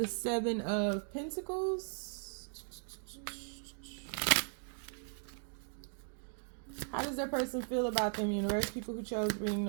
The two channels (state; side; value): silent; left; digital silence